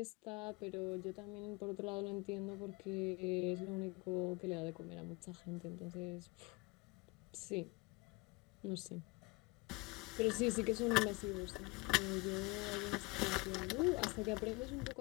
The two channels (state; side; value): quieter; right; 25.2 dB